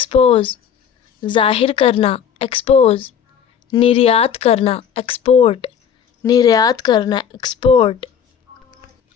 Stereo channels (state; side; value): quieter; right; 8.0 dB